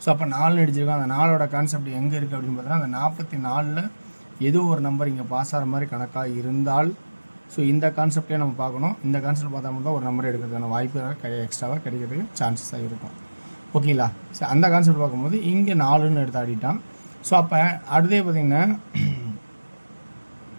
ஸோ அப்போ 4 அடிச்சிருக்கோம். அந்த 4ஓட கான்செப்ட் எங்கே இருக்குது அப்படின்னு பார்த்தீங்கன்னா, அந்த 44ல் ஏதோ ஒரு நம்பர் இங்கே பாஸ் ஆகிற மாதிரி கணக்காக இருந்தால், ஸோ இந்த கான்செப்டே நம்ம பார்க்கணும். இந்த கான்செப்ட் பார்த்தா மட்டும் தான் ஒரு நம்பர் எடுக்கிறதுக்கான வாய்ப்பு எக்ஸ்ட்ராவாக கிடைக்கிறதுக்கு சான்சஸாக இருக்கும். ஓகேங்களா? ஸோ அந்த கான்செப்ட் பார்க்கும்போது இங்கே 4ன்னு எடுத்து ஆடிட்டான். ஸோ அப்போ அடுத்தே பார்த்திங்கன்னா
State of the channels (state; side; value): inverted; both; correlation -1.00